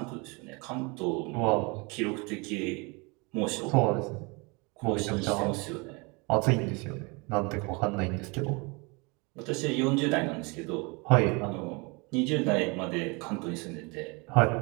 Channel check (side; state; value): left; quieter; 29.0 dB